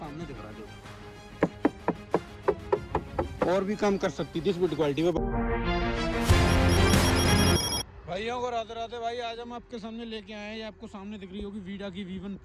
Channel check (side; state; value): both; identical; correlation 1.00